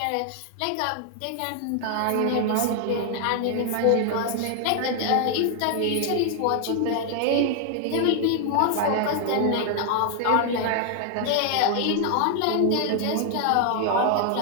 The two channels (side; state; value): both; different; correlation 0.00